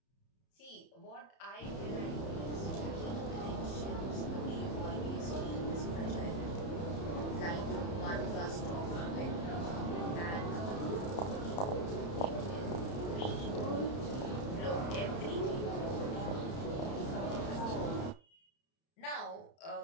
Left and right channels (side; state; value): right; late; 30 ms